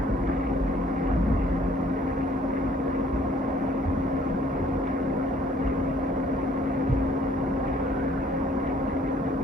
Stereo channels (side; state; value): both; normal; correlation 0.60